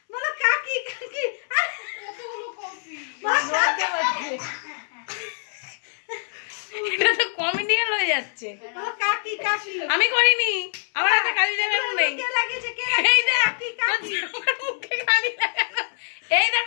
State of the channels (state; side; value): silent; right; 62 dB below the other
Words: বলো কাকি কাকি আরে কতগুলো কফি এটা তো কমেডিয়ান হয়ে যাচ্ছে বলো কাকি কাকি আমি করিনি আমার হাতে কালি লাগানো নেই কে লাগিয়েছে কে এই দেখ কাকি কাকি তোর মুখে কালি লাগানো এই